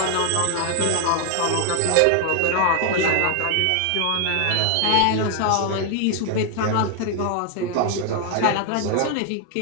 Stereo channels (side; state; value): both; different; correlation 0.00